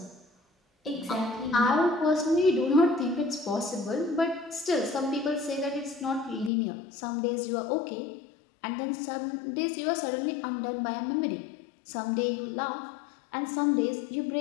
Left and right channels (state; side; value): drops out; right; at 6.5 s